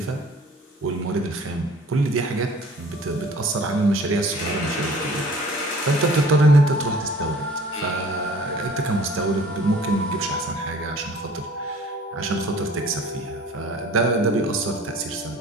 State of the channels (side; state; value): both; normal; correlation 0.49